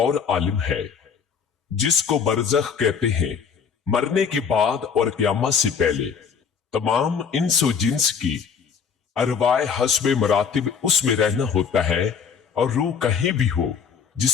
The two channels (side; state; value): right; quieter; 6.6 dB